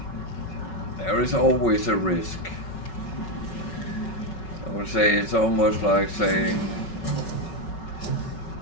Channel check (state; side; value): late; right; 5.4 ms